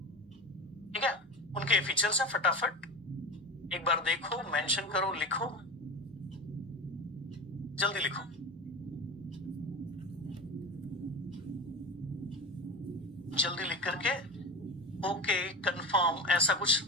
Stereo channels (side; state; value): both; normal; correlation 0.27